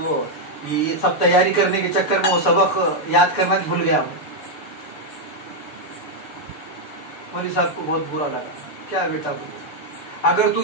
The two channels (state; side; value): late; right; 6.9 ms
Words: वो ये सब तैयारी करने के चक्कर में वो सबक याद करना भूल गया मैं। मौलवी साहब को बहुत बुरा लगा। क्या बेटा, बोले अगर तू